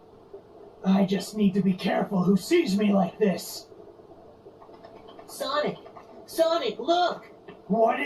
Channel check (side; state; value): both; identical; correlation 1.00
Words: I just need to be careful who sees me like this. Sonic! Sonic, look! What